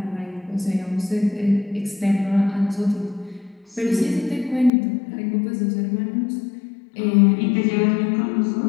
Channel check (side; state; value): right; drops out; at 4.7 s